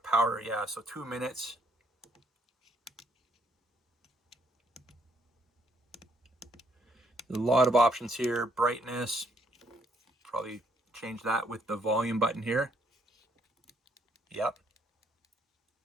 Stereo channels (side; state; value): both; normal; correlation 0.69